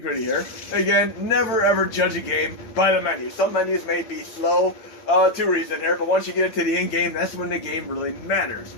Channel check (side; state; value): right; late; 8.8 ms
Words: here. Again, never ever judge a game by the menu. Some menus may be slow to reason here, but once you get into the in-game, that's when the game really matters.